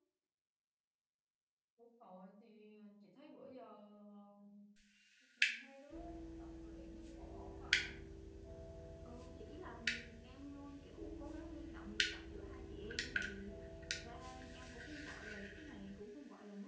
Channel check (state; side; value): identical; both; correlation 1.00